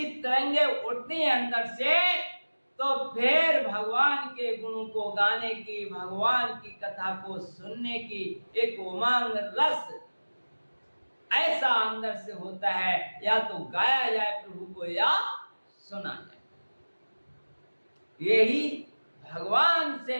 तरंगे उठती हैं अंदर से, तो फिर भगवान के गुणों को गाने की, भगवान की कथा को सुनने की एक उमंग, रस ऐसा अंदर से होता है, या तो गाया जाए प्रभु को या सुना जाए। यही भगवान से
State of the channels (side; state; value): both; inverted; correlation -1.00